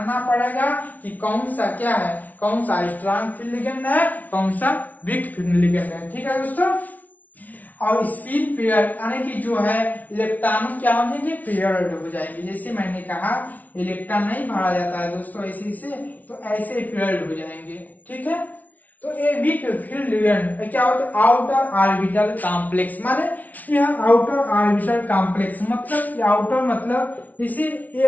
पड़ेगा कि कौन सा क्या है, कौन सा स्ट्रॉन्ग फील्ड लिगेंड है, कौन सा वीक फील्ड लिगेंड है, ठीक है दोस्तों। और स्पिन पेयर यानी कि जो है इलेक्ट्रॉन क्या हो जाएंगे? पेयर्ड हो जाएंगे। जैसे मैंने कहा इलेक्ट्रॉन नहीं भरा जाता है दोस्तों ऐसे से, तो ऐसे पेयर्ड हो जाएंगे, ठीक है। तो ये वीक फील्ड लिगेंड क्या होता है? आउटर ऑर्बिटल कॉम्प्लेक्स, माने यह आउटर ऑर्बिटल कॉम्प्लेक्स मतलब आउटर मतलब इसे ये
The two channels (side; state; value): right; late; 0.075 ms